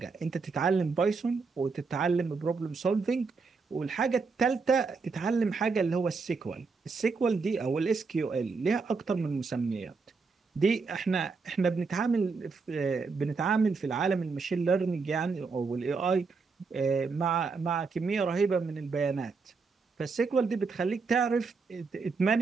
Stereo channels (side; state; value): left; quieter; 4.6 dB